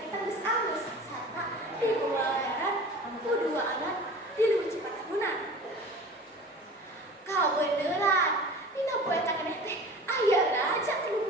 geus alus, sarta dibawa aran ku dua anak di leuwih Cipatahunan. Kabeneran, dina poe tadi teh aya raja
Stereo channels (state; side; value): normal; both; correlation 0.39